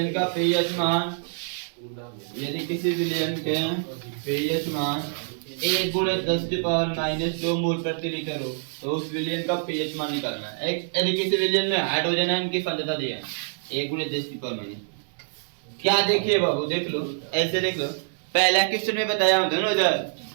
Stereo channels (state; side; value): silent; left; digital silence